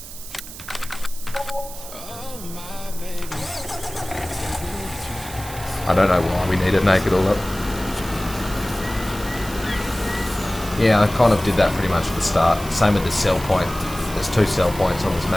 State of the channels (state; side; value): noise; right; hiss, 13 dB below the sound